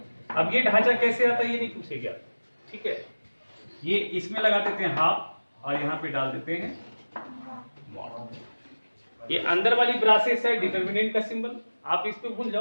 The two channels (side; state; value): both; inverted; correlation -1.00